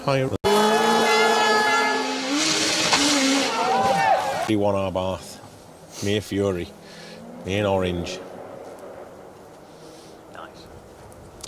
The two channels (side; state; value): both; identical; correlation 1.00